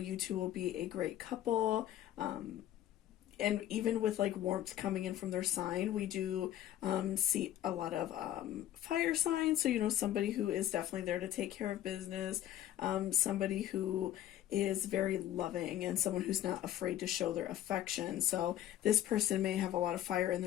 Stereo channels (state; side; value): quieter; right; 12.4 dB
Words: two will be a great couple. And even with like warmth coming in from their sign, we do see a lot of fire signs. So, somebody who is definitely there to take care of business, somebody who is very loving, and someone who's not afraid to show their affection. So this person may have a lot of fire in